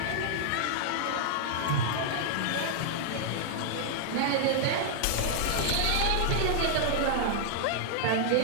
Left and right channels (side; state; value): both; different; correlation -0.01